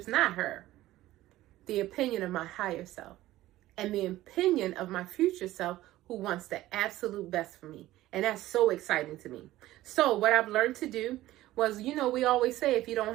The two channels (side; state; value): left; quieter; 15.8 dB